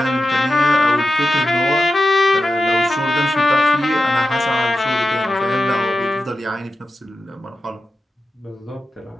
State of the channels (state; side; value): normal; both; correlation 0.91